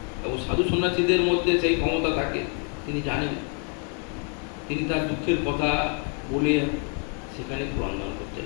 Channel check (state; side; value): quieter; right; 38.8 dB